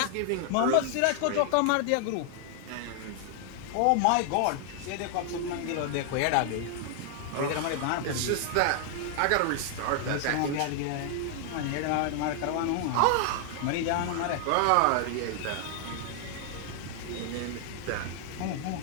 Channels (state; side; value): different; both; correlation 0.00